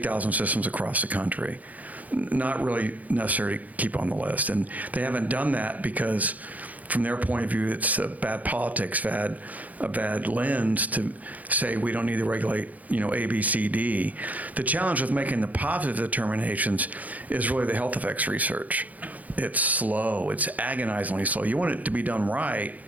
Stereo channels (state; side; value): late; left; 0.077 ms